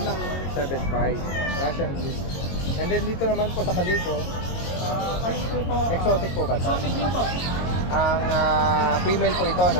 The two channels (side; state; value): right; late; 22 ms